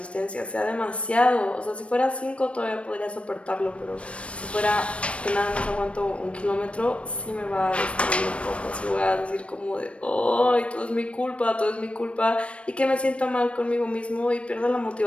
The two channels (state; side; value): late; right; 0.061 ms